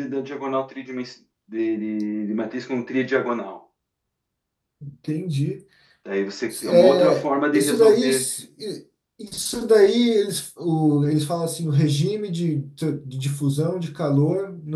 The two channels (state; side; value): identical; both; correlation 1.00